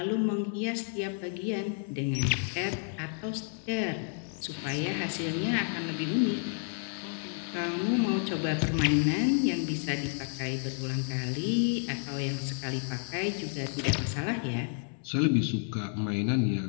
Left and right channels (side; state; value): right; silent; 57 dB below the other